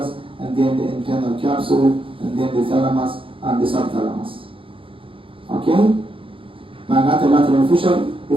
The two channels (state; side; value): late; left; 0.26 ms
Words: and then the internal capsule, and then the thalamus and the subthalamus. Okay? معناته lateral fissure,